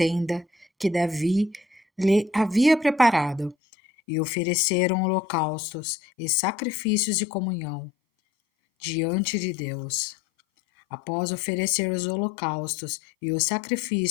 que Davi lhe havia preparado, e ofereceram holocaustos e sacrifícios de comunhão diante de Deus. Após oferecer os holocaustos e os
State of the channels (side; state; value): right; drops out; at 3.6 s